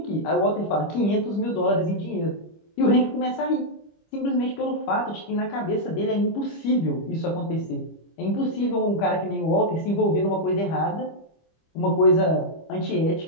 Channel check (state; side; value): late; right; 25 ms